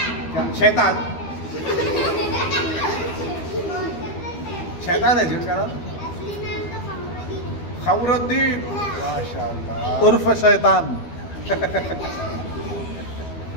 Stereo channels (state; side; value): late; right; 12 ms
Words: क्या? शैतान, शैतान है जी उसका नाम, खमरुद्दीन, माशाल्लाह, उर्फ शैतान।